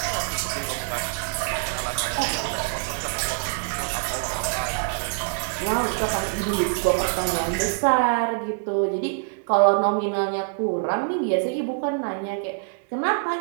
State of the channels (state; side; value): silent; left; digital silence